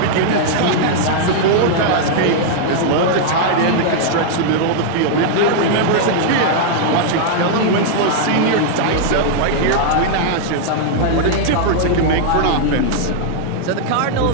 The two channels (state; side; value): different; both; correlation -0.01